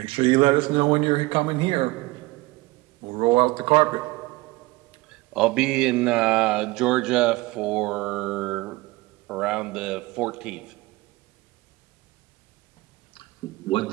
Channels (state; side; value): quieter; left; 21.3 dB